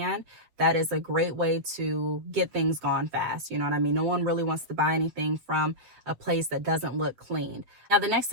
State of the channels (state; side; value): late; left; 8.2 ms